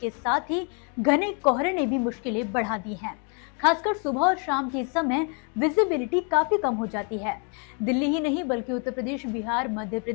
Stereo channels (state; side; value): quieter; right; 37.5 dB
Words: साथ ही घने कोहरे ने भी मुश्किलें बढ़ा दी हैं। खासकर सुबह और शाम के समय विजिबिलिटी काफी कम हो जाती है। दिल्ली ही नहीं बल्कि उत्तर प्रदेश, बिहार, मध्य